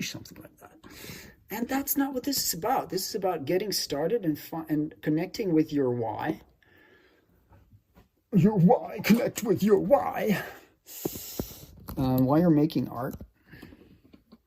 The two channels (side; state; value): both; identical; correlation 1.00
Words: something like that. And that's not what this is about. This is about getting started and connecting with your why. Your why. Connect with your why. While you're making art.